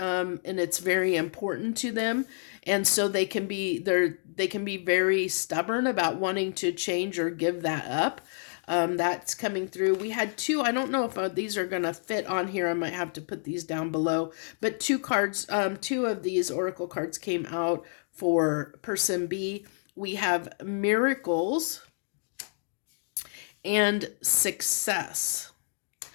it's very important to them. And so they can be very stubborn about wanting to change or give that up. That's coming through. We had two, I don't know if these are going to fit on here. I might have to put these down below. But two of these oracle cards came out for person B. We have miracles and success.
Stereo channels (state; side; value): silent; right; 57 dB below the other